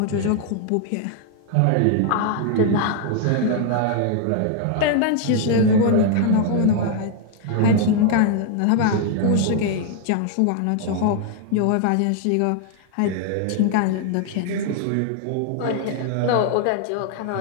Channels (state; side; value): different; both; correlation 0.00